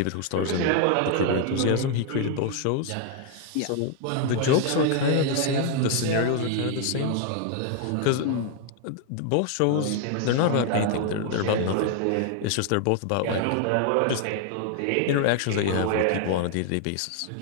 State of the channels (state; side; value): different; both; correlation 0.00